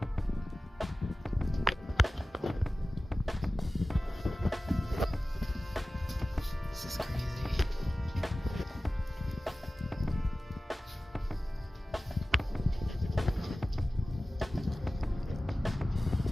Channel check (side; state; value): both; normal; correlation 0.96